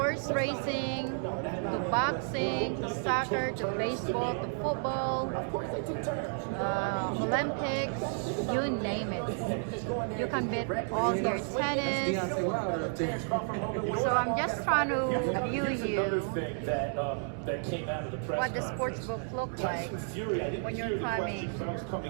racing to boxing to soccer to baseball to football, Olympics, you name it. You can bet all your tennis. So I'm just trying to view you what the sports book looks like when you're coming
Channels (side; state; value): left; silent; 57 dB below the other